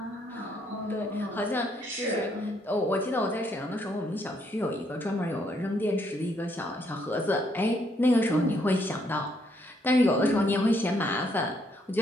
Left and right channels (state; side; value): normal; both; correlation 0.72